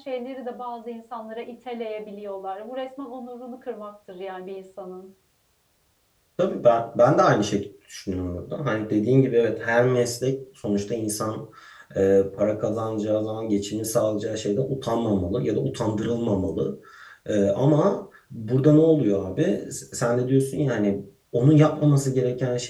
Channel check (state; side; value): identical; both; correlation 1.00